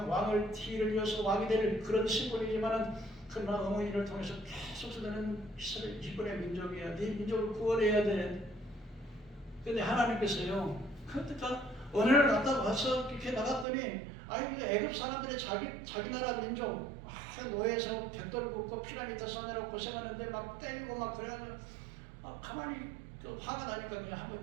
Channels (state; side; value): drops out; left; at 13.7 s